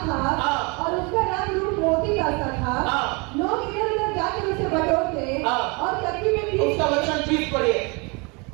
था और उसका रंग रूप मोती का सा था। लोग इधर उधर जाकर उसे बटोरते और चक्की में भी। उसका वचन 20 पढ़िए,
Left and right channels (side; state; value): left; quieter; 29.9 dB